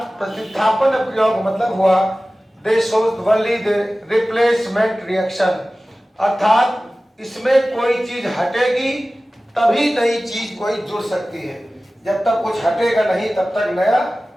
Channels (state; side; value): normal; both; correlation 0.97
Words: प्रतिस्थापन अपक्रियाओं का मतलब हुआ दे shows only the replacement reaction, अर्थात इसमें कोई चीज हटेगी तभी नई चीज कोई जुड़ सकती है। जब तक कुछ हटेगा नहीं तब तक नया